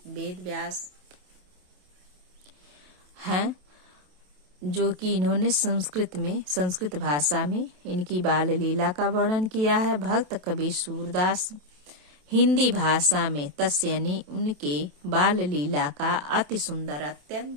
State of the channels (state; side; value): late; left; 27 ms